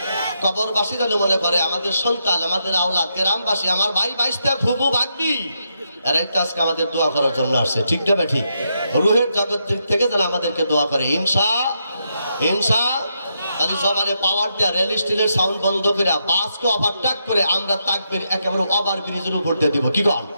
কবরবাসী যেন মনে করে আমাদের সন্তান, আমাদের আওলাদ, গ্রামবাসী, আমার ভাই বাইশটা ফুবু ভাগ্নি, এরাই তো আজকে আমাদের দোয়া করার জন্য আসছে। ঠিক না বে ঠিক? রুহের জগৎ থেকে যেন আমাদেরকে দোয়া করে ইনশাআল্লাহ। তাহলে জবানে পাওয়ার দেয়া, রেল স্টিলের সাউন্ড বন্ধ করে, বাসকে ওভারটেক করে আমরা তাকবীর একেবারে ওভার ব্রিজের উপর দিয়ে দিব। কি গান?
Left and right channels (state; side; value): inverted; both; correlation -0.81